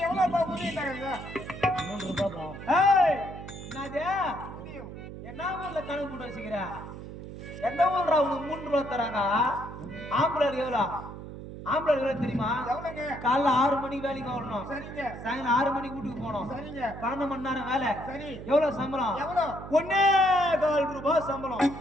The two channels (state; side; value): noise; right; hum, 11 dB below the sound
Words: எவ்வளவு உதவி தராங்க 3 ரூபாய் போகும் ஏய் என்னது என்ன ஊர்ல கணக்கு போட்டு வச்சுக்கிற எந்த ஊர்ல உனக்கு 3 ரூபாய் தராங்க ஆம்பளை எவ்வளவு ஆம்பளை எவ்வளவு தெரியுமா காலைல 6 மணிக்கு வேலைக்கு வரணும் சாயங்காலம் 6 மணிக்கு வீட்டுக்கு போகணும் 12 மணி நேரம் வேலை சரி எவ்வளவு சம்பளம் 1.25 ரூபாய் சம்பளம்